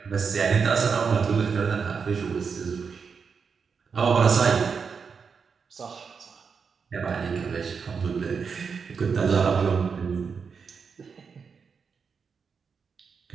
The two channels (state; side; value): quieter; left; 5.8 dB